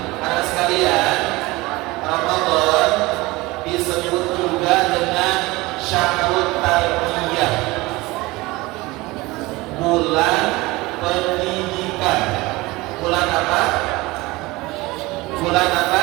Anak sekalian, Ramadan disebut juga dengan Syahrul Tarbiyah, bulan pendidikan. Bulan apa? Bulan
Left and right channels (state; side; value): quieter; left; 21.3 dB